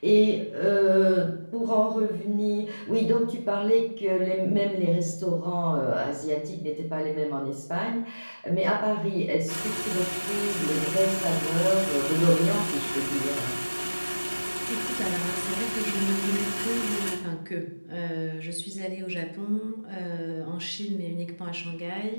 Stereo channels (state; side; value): inverted; both; correlation -1.00